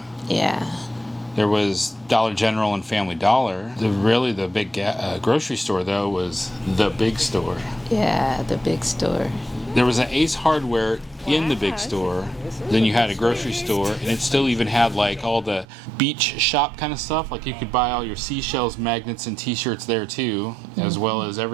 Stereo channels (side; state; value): left; drops out; at 15.7 s